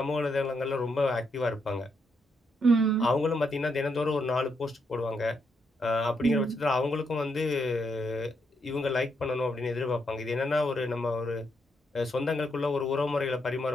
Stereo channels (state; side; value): normal; both; correlation 0.78